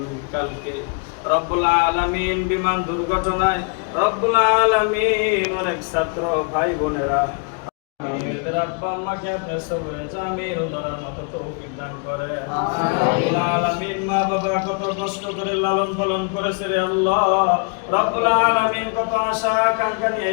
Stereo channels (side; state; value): right; quieter; 36.4 dB